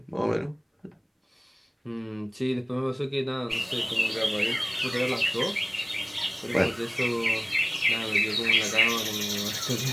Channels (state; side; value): identical; both; correlation 1.00